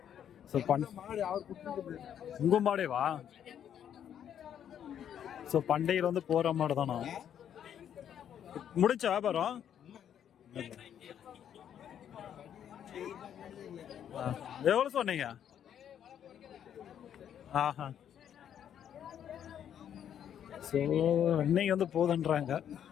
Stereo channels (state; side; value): quieter; right; 9.4 dB